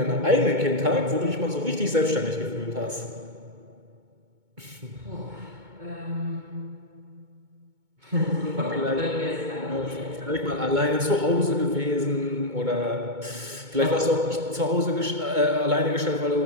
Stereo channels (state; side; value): late; left; 2.2 ms